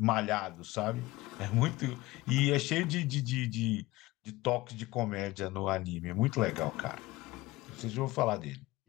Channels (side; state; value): right; quieter; 19.6 dB